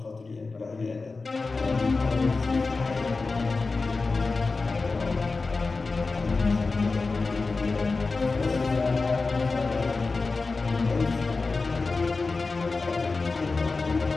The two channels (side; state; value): right; quieter; 3.9 dB